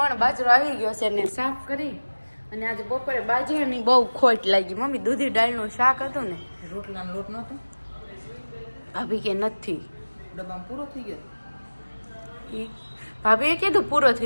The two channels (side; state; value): both; inverted; correlation -1.00